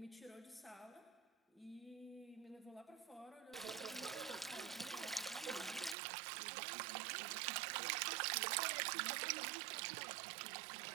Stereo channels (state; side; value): drops out; left; at 6.0 s